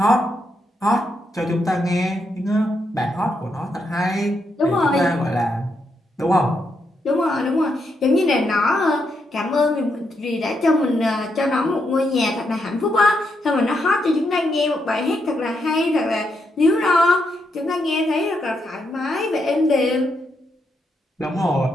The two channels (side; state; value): both; normal; correlation 0.80